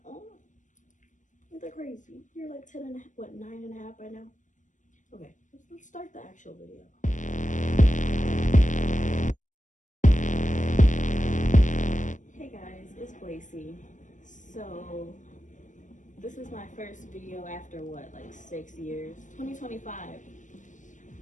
Oh, isn't that crazy? You're like 10 and a half, what, 9 and a half right now? Okay, let's start the actual video. Hey guys, it's Blaceee. So, this is my first video after what, like 6 years? 2025.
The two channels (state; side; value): late; right; 0.37 ms